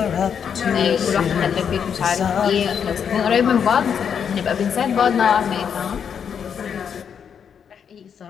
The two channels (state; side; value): quieter; right; 7.5 dB